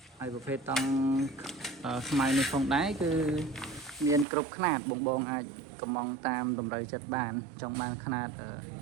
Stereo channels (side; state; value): left; drops out; at 4.2 s